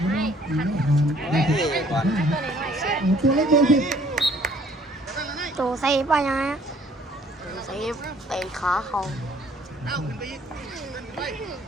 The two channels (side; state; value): both; normal; correlation 0.60